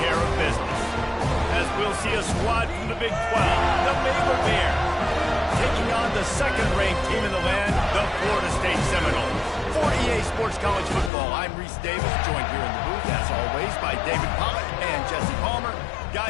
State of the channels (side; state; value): right; drops out; at 11.1 s